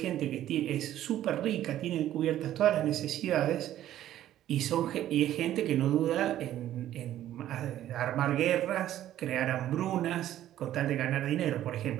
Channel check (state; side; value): quieter; left; 12.6 dB